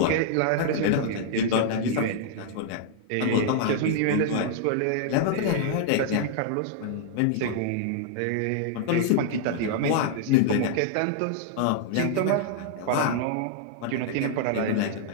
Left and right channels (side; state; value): both; different; correlation -0.01